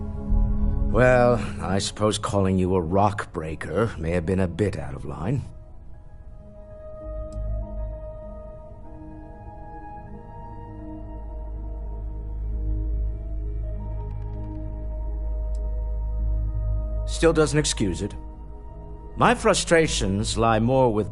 Well, I suppose calling you a rock breaker may have been a bit out of line. Still doesn't excuse it. My frustrations lie more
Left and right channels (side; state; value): both; identical; correlation 1.00